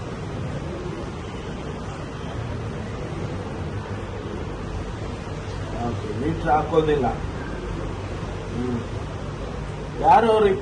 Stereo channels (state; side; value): identical; both; correlation 1.00